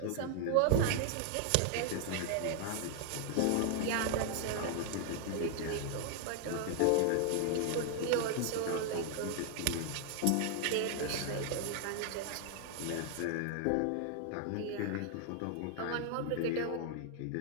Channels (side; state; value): both; different; correlation 0.00